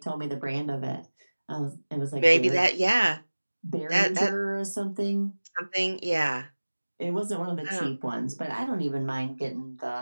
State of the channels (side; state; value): both; inverted; correlation -1.00